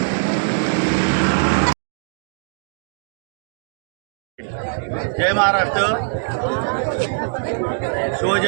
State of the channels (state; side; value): silent; left; digital silence